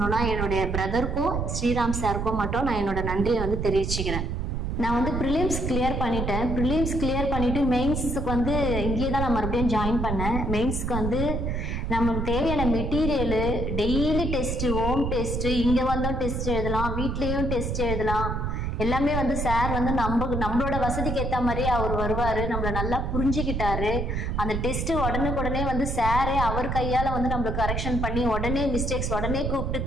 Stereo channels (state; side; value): noise; right; rumble, 1 dB below the sound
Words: என்னுடைய பிரதருக்கும் ஸ்ரீராம் சாருக்கும் மட்டும் நான் என்னோட நன்றியை வந்து தெரிவிச்சுக்கிறேன். நான் வந்து ப்ரிலிம்ஸ் கிளியர் பண்ணிட்டேன். ப்ரிலிம்ஸ் கிளியர் பண்ணிவிட்டு மெயின்ஸுக்கு வந்து இங்கேயே தான் நான் மறுபடியும் ஜாயின் பண்ணேன். மெயின்ஸுக்கு வந்து நமக்கு தேவையான material, daily test, home test, இங்கே வந்தோம் டெஸ்ட் எழுதலாம், வீட்லேயும் டெஸ்ட் எழுதலாம், எல்லாமே வந்து சார் வந்து நம்மளோட வசதிக்கு ஏற்ற மாதிரியே அவர் வருவார். நம்மளை நல்லா புரிஞ்சுக்கிட்டாரு. அந்த டெஸ்ட்டு உடனுக்குடனே வந்து சாரே அவர் கையால் வந்து நம்மளுக்கு கரெக்ஷன் பண்ணி உடனே மிஸ்டேக்ஸ் உடனே கூப்பிட்டு